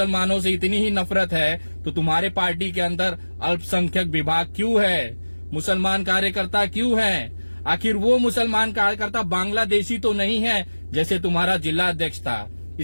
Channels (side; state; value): both; inverted; correlation -1.00